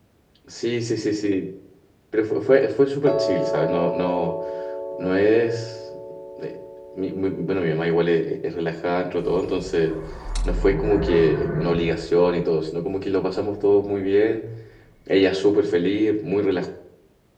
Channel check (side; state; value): both; identical; correlation 1.00